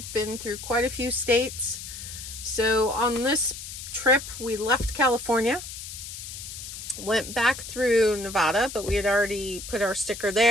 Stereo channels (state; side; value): noise; left; hiss, 10 dB below the sound